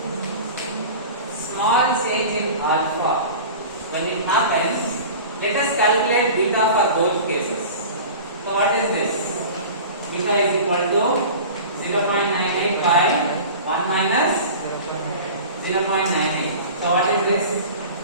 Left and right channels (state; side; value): inverted; both; correlation -0.37